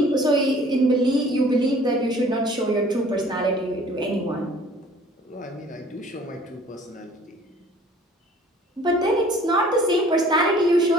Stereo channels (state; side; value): normal; both; correlation 0.52